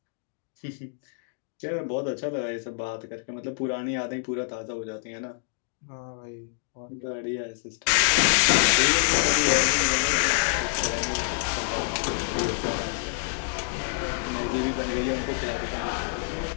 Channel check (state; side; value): silent; right; 60 dB below the other